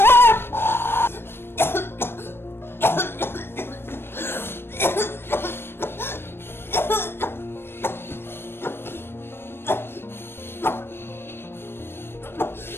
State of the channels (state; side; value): late; right; 0.11 ms